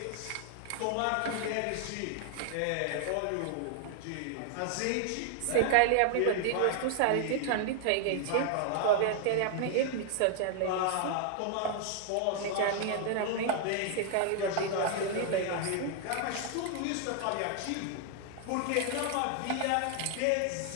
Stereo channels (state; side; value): different; both; correlation 0.00